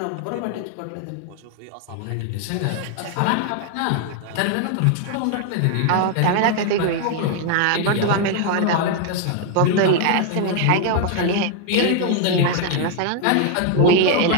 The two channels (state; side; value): different; both; correlation 0.00